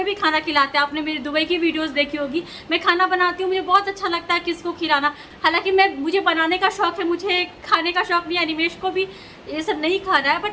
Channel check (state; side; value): identical; both; correlation 1.00